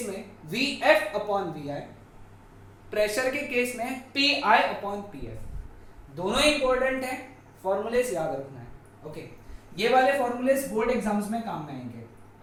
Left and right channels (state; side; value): identical; both; correlation 1.00